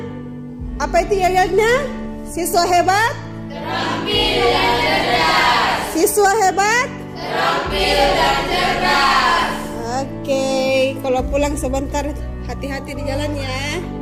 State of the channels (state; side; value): identical; both; correlation 1.00